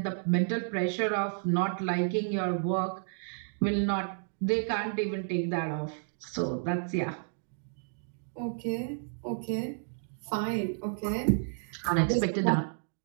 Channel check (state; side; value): silent; left; digital silence